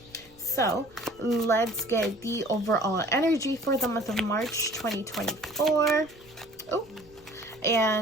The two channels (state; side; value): noise; right; rumble, 27 dB below the sound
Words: so let's get the overall energy for the month of March 2024. Oh,